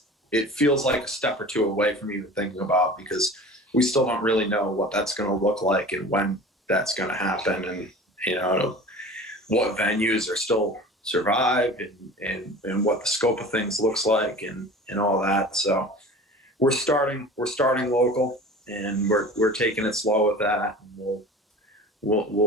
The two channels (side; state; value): both; normal; correlation 0.39